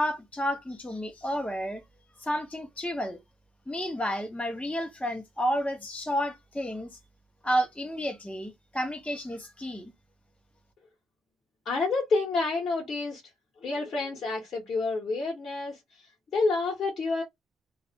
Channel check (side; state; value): both; normal; correlation 0.82